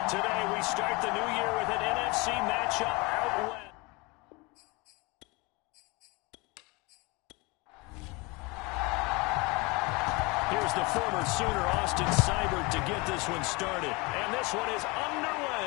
Today we start the new year with an NFC matchup out west. Here's the former Sooner Austin Seibert to get this one started. And this one is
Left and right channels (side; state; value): right; quieter; 26.5 dB